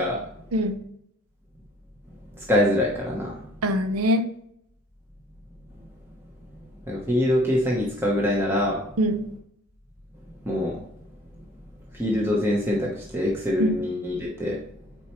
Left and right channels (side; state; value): both; normal; correlation 0.54